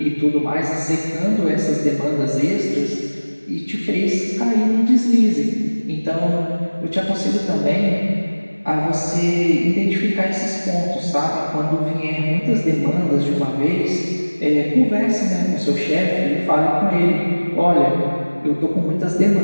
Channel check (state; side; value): inverted; both; correlation -1.00